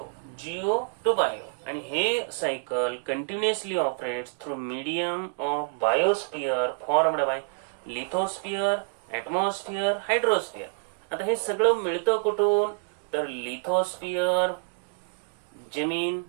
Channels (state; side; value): silent; left; digital silence